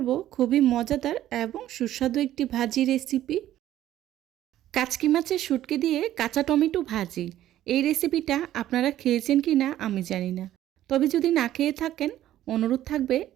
খুবই মজাদার এবং সুস্বাদু একটি ভাজি রেসিপি। কাচকি মাছের শুটকি দিয়ে কাঁচা টমেটো ভাজি। এই রেসিপিটা আপনারা খেয়েছেন কিনা আমি জানি না। তবে যদি না খেয়ে থাকেন, অনুরোধ থাকবে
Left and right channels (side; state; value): left; quieter; 12.9 dB